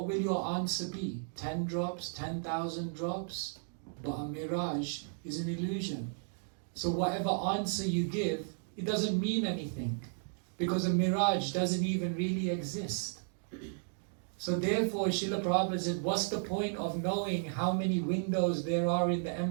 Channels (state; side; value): silent; left; digital silence